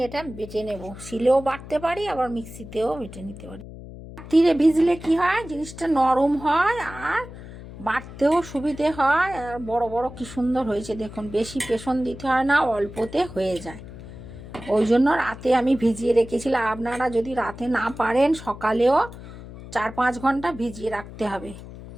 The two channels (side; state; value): left; noise; hum, 14 dB below the sound